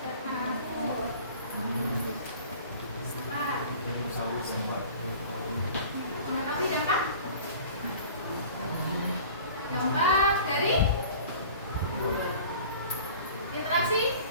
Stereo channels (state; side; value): inverted; both; correlation -0.44